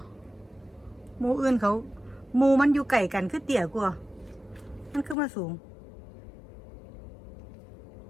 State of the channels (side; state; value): right; drops out; at 5.2 s